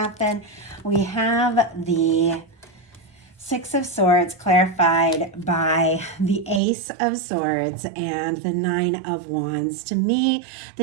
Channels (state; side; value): drops out; left; at 6.6 s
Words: We have the Six of Swords clarified by the Ace of Swords and the Nine of Wands. To me,